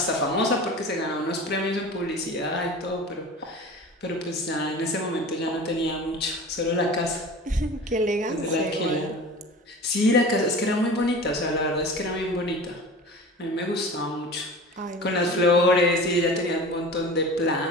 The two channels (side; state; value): both; normal; correlation 0.36